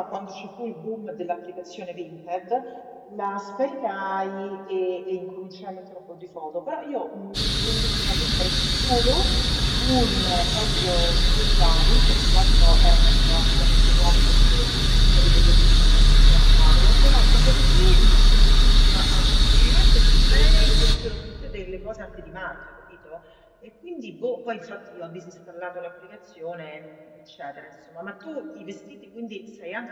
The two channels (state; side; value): identical; both; correlation 1.00